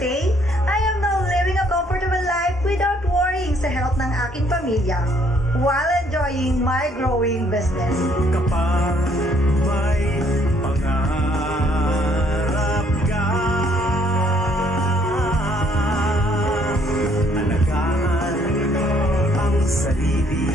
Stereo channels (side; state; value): both; normal; correlation 0.65